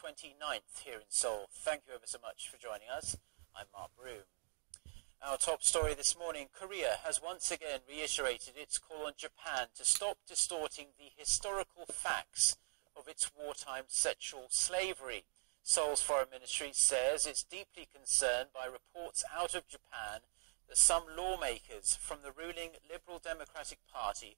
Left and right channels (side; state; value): left; silent; digital silence